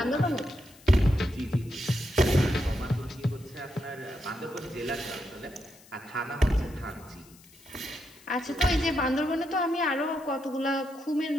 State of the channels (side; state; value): left; noise; hiss, 24 dB below the sound